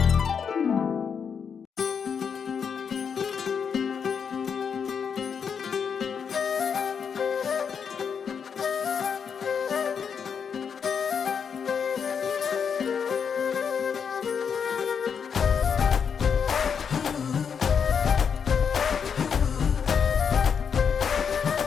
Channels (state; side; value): quieter; right; 6.8 dB